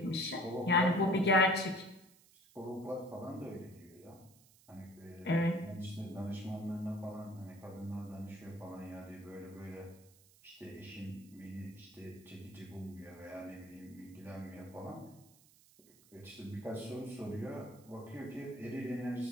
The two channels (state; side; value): noise; right; hiss, 26 dB below the sound